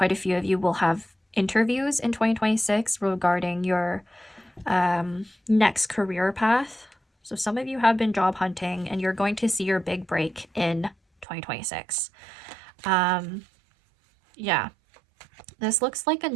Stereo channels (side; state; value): left; drops out; at 11.2 s